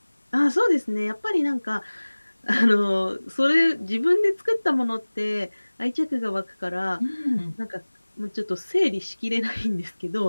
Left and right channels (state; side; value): inverted; both; correlation -1.00